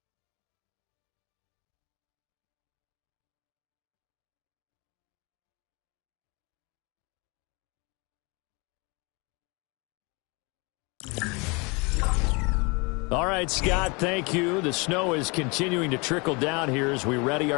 All right, Scott, thank you. The snow is continuing to trickle down here as we ready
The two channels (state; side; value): quieter; right; 29.2 dB